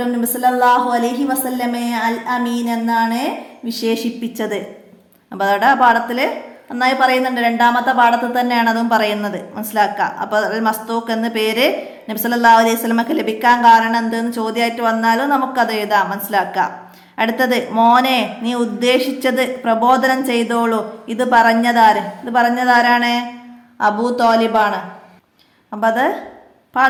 നബി സല്ലല്ലാഹു അലൈഹി വസല്ലമയെ അൽ അമീൻ എന്നാണ് വിശേഷിപ്പിച്ചത്. അപ്പോൾ അതോടെ ആ പാഠത്തിൽ നന്നായി പറയുന്നുണ്ട്. 2ാമത്തെ പാഠത്തിൽ തന്നെയാണ് അതും പറയുന്നത്, മനസ്സിലാക്കുക. അപ്പോൾ അൽ മസ്തൂഖ് എന്ന പേര് നബി സല്ലല്ലാഹു അലൈഹി വസല്ലമക്ക് ലഭിക്കാൻ കാരണം എന്തെന്ന് ചോദ്യമായിട്ട് വന്നാലും നമുക്കത് എഴുതാം, മനസ്സിലാക്കുക. അടുത്തത്, മോനെ നീ ഉദ്ദേശിച്ചത് പ്രബോധനം ചെയ്തോളൂ. ഇത് പറഞ്ഞതാരാണ്? അബൂ തോലിബാണ്. അപ്പം അത്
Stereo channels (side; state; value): both; identical; correlation 1.00